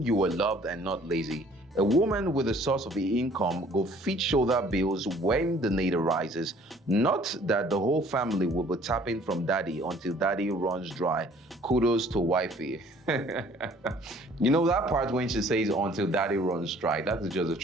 you are loved and not lazy. A woman with a source of income go fit shoulder bills when the need arises. Not that the whole family will be tapping from daddy until daddy runs dry. Kudos to wifey." You know that part when she says until daddy runs dry, that is just the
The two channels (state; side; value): normal; both; correlation 0.55